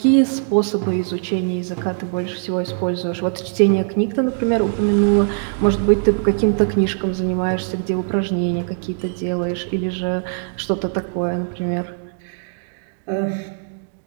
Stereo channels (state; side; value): silent; left; digital silence